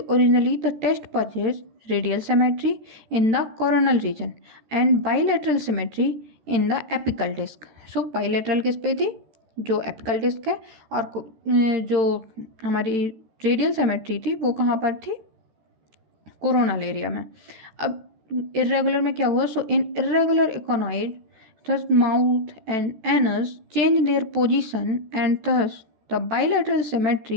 the test purchase radial symmetry in the coronal region and bilateral symmetry in the apical disc. So bilateral किस पे थी, जो एपिकल डिस्क है, और जो हमारी रेडियल सिमेट्री थी वो कहाँ पर थी, कोरोनल एरिया में। अब इर्रेगुलर में क्या हुआ, सो इन irregular इकोनॉइड thus mouth and anus changed their position and thus the bilateral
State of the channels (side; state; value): left; late; 13 ms